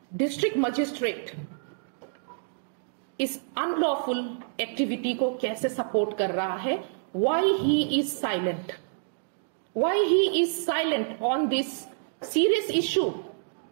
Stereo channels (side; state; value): left; silent; digital silence